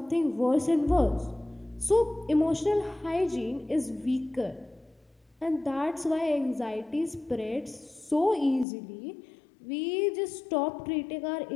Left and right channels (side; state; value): right; drops out; at 8.7 s